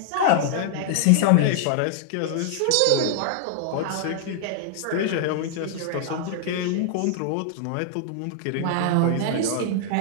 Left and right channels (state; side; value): different; both; correlation -0.01